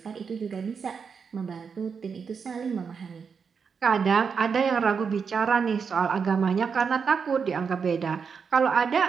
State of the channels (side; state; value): left; quieter; 6.0 dB